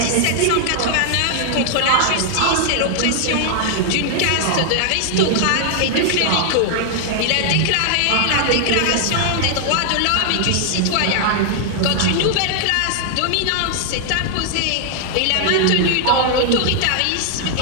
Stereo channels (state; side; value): different; both; correlation 0.00